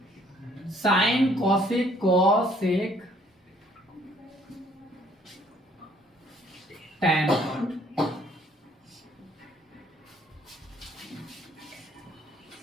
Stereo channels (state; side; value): normal; both; correlation 0.62